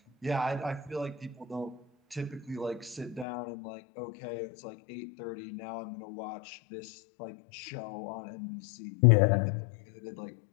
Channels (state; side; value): drops out; right; at 3.2 s